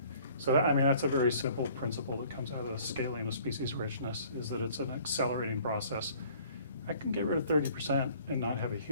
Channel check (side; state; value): both; inverted; correlation -0.54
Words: So that's a very simple principle that comes out of the scaling of species richness, is that it's an accelerating process. I can get rid of 30% and not have a